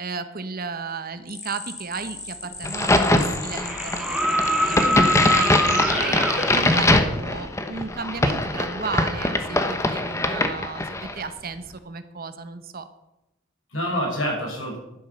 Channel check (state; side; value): normal; both; correlation 0.43